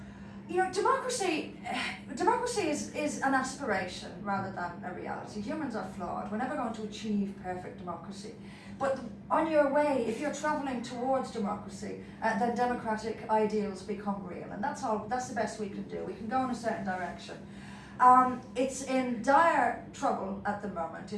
Democracy is an aspiration rather than a reality. Humans are flawed. We're never going to achieve perfect democracy. But on your way, if you're travelling towards democracy, then democratic ideals become real. And that's the best we can do. We can go in a certain direction. It's in dire trouble at the moment.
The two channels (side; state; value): both; identical; correlation 1.00